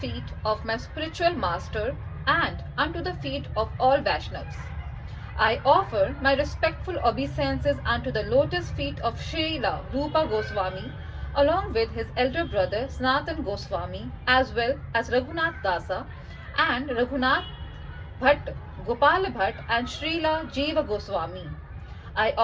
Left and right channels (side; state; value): both; identical; correlation 1.00